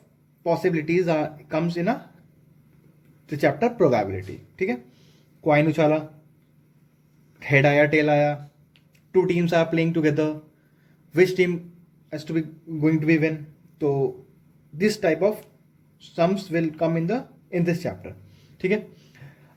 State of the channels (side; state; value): both; identical; correlation 1.00